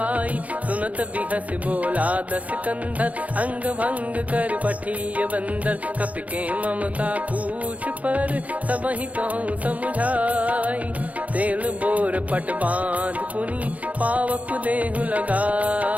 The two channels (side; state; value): left; late; 0.069 ms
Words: सुनत बिहस बोला दस कंधर, अंग भंग कर पठिय बंदर। कपि के ममता पूछ पर, सब ही कहूँ समझाई। तेल बोर पट बांध पुनि, पावक देहु